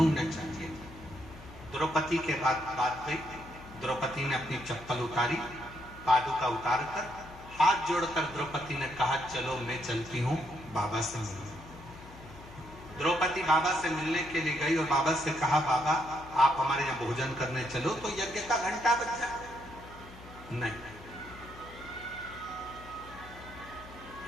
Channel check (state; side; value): noise; left; hum, 17 dB below the sound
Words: चाहिए। द्रौपदी के बात गई, द्रौपदी ने अपनी चप्पल उतारी, पादुका उतार कर हाथ जोड़कर द्रौपदी ने कहा चलो मैं चलती हूं बाबा से मिलने। द्रौपदी बाबा से मिलने के लिए गई और बाबा से कहा बाबा आप हमारे यहाँ भोजन करने चलो तो यज्ञ का घंटा बज जाए। नहीं,